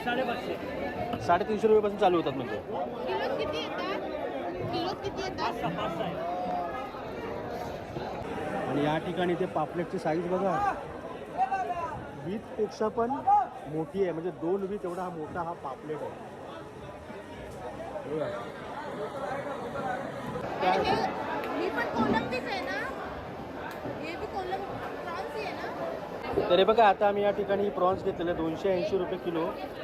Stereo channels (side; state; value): both; identical; correlation 1.00